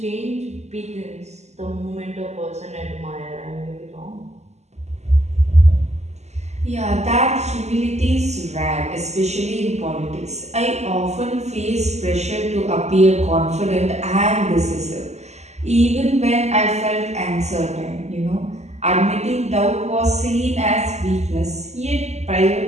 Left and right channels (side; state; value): left; late; 0.33 ms